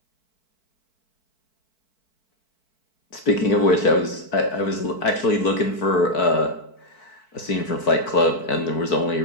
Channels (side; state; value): right; late; 4.6 ms